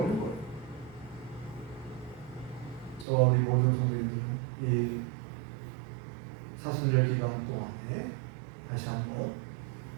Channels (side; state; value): left; drops out; at 3.1 s